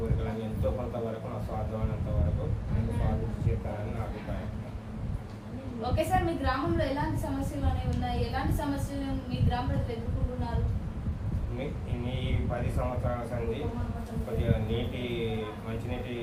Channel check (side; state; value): both; identical; correlation 1.00